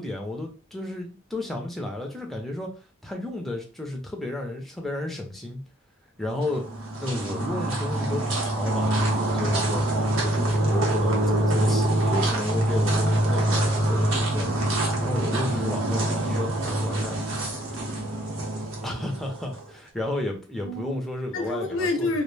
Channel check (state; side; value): normal; both; correlation 0.66